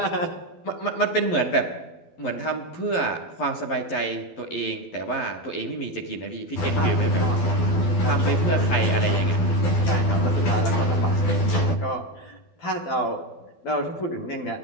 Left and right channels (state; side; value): late; right; 11 ms